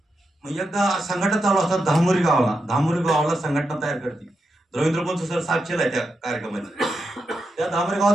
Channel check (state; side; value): normal; both; correlation 0.86